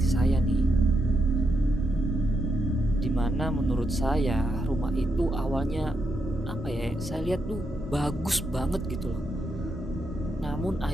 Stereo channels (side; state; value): both; normal; correlation 0.82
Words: saya nih, dimana menurut saya rumah itu awalnya saya lihat tuh bagus banget gitu loh. Namun